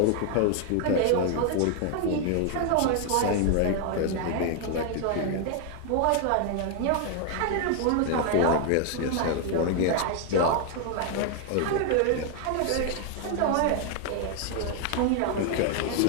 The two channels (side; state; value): both; different; correlation 0.00